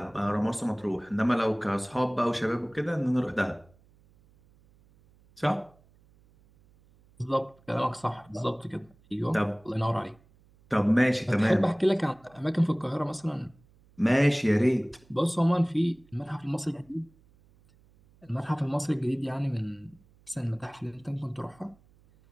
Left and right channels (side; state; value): right; noise; hum, 30 dB below the sound